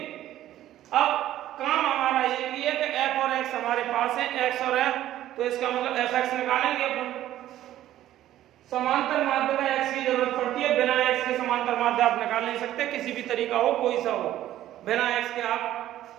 अब काम हमारा ये भी है कि f और x हमारे पास है, x और f, तो इसका मतलब fx निकालेंगे अपन। समांतर माध्य में x की जरूरत पड़ती है, बिना x के समांतर माध्य आप निकाल नहीं सकते, किसी भी तरीका हो कोई सा हो, बिना x के आप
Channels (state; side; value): quieter; left; 13.2 dB